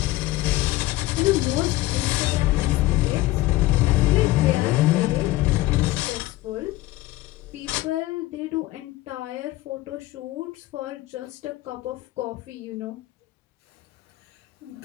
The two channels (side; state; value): right; quieter; 17.7 dB